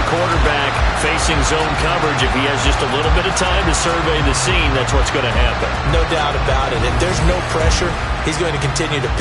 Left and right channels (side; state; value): both; identical; correlation 1.00